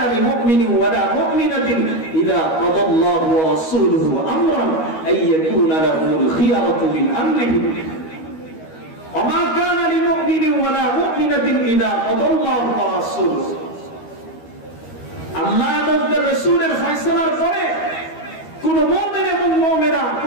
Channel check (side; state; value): right; late; 12 ms